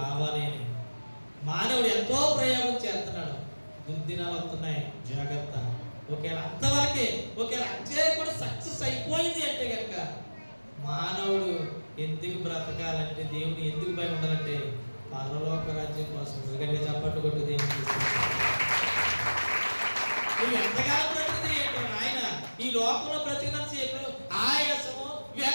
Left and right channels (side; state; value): both; inverted; correlation -1.00